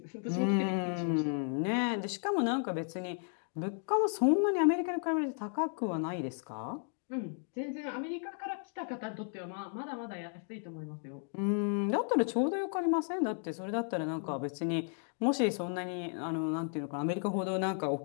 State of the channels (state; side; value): silent; right; 55 dB below the other